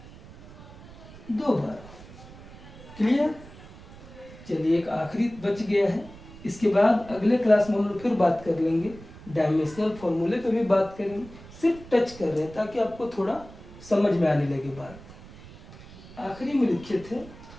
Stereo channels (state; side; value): noise; right; rumble, 18 dB below the sound